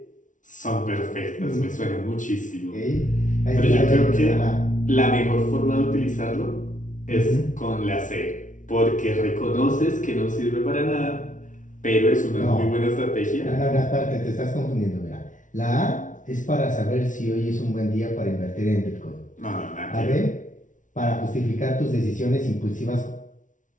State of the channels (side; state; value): right; late; 0.37 ms